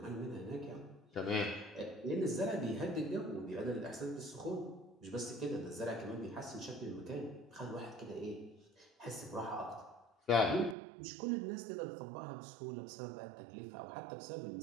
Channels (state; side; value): drops out; left; at 10.8 s